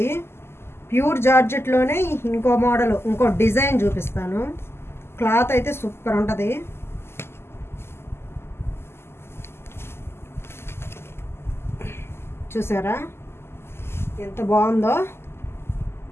ప్యూర్ జార్జెట్లోనే ఇంకో మోడల్, ఇంకో డిజైన్ చూపిస్తాను. క్లాత్ అయితే సూపర్ ఉంటుంది. చూసారా ఎంత బాగుందో,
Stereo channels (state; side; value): late; right; 0.12 ms